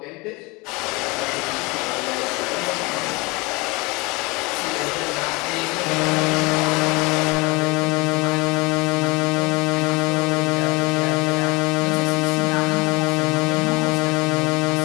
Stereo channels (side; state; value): right; quieter; 25.7 dB